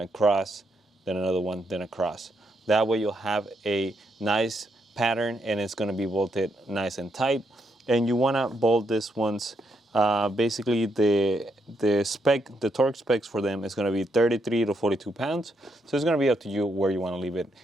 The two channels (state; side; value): normal; both; correlation 0.78